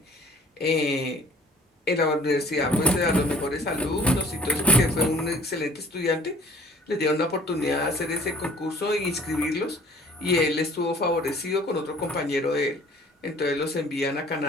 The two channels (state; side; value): normal; both; correlation 0.52